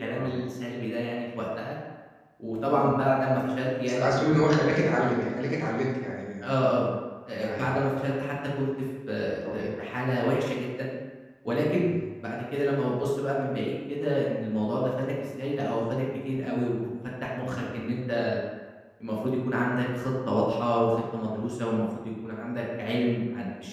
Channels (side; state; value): both; identical; correlation 1.00